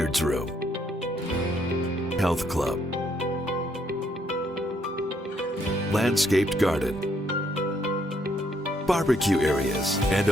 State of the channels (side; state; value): both; normal; correlation 0.71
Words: room, health club, landscaped garden, barbecue areas, and